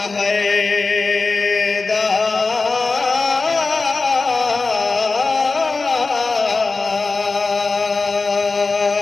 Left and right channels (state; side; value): quieter; right; 3.9 dB